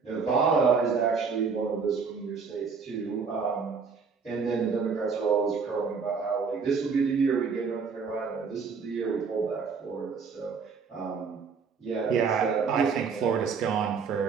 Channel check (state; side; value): quieter; left; 5.5 dB